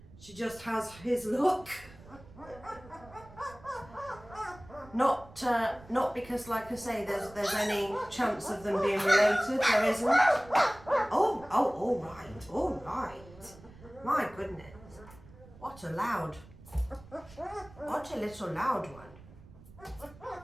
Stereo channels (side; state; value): right; noise; rumble, 21 dB below the sound